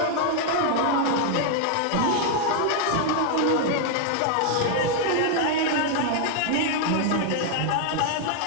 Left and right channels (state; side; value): different; both; correlation 0.00